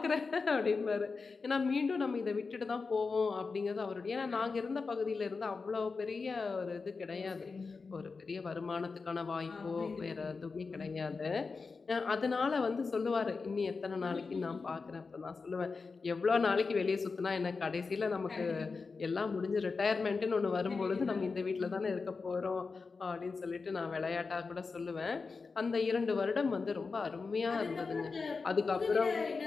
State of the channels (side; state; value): right; quieter; 4.5 dB